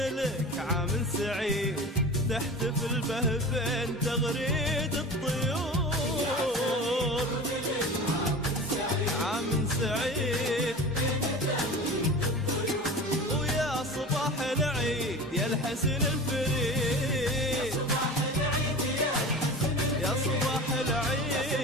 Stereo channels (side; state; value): both; normal; correlation 0.34